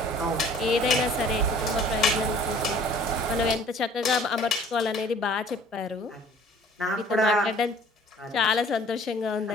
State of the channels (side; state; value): both; normal; correlation 0.52